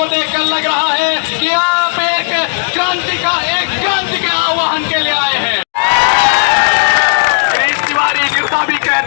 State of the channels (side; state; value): right; silent; digital silence